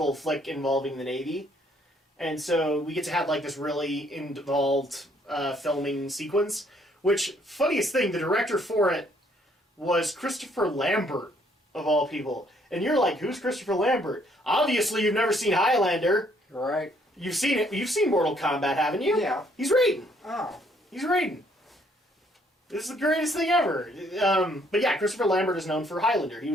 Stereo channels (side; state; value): both; normal; correlation 0.66